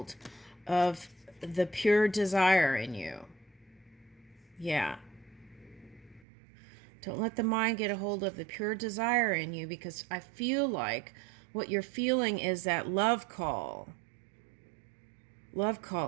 of the pure desire in you. Yeah. Don't let the mind get a hold of the pure desire in you, because I feel like what you're feeling is that love call. Love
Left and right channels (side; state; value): left; drops out; at 6.2 s